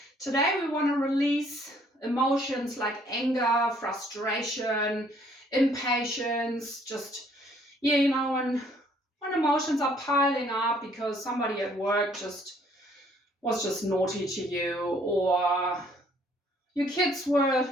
Today we want to release emotions like anger, frustration, impatience, when emotions are piling up because somebody at work was just naughty to you, or your kids were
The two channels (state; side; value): normal; both; correlation 0.63